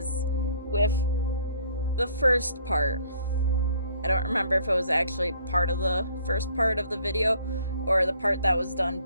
with the first part, I don't remember if it was actually part of the first part of the video or the part that was done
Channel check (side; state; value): both; inverted; correlation -0.60